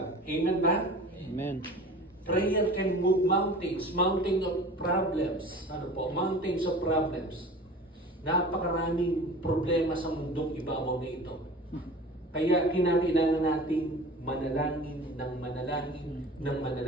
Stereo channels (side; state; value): both; normal; correlation 0.39